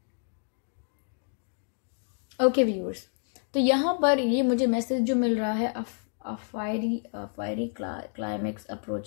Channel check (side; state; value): right; silent; 55 dB below the other